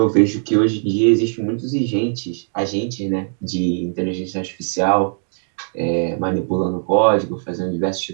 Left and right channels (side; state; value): left; silent; digital silence